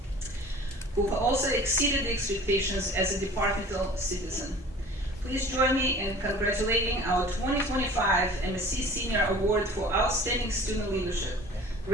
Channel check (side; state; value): both; normal; correlation 0.45